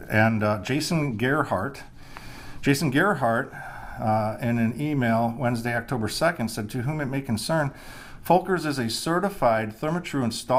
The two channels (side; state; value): both; identical; correlation 1.00